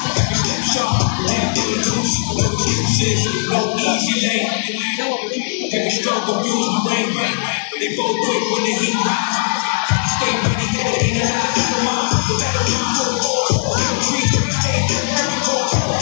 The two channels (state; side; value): silent; right; digital silence